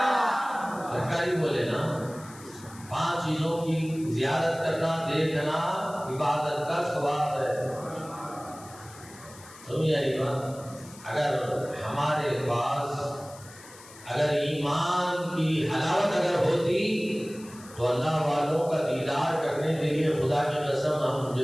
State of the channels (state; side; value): noise; left; hiss, 20 dB below the sound